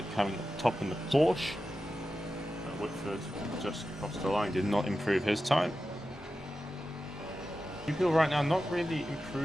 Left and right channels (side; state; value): both; normal; correlation 0.92